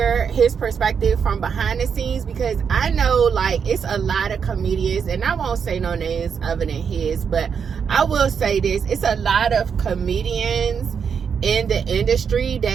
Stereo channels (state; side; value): quieter; left; 6.7 dB